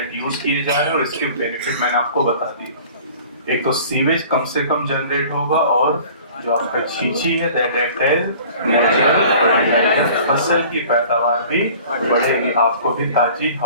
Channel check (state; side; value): inverted; both; correlation -0.47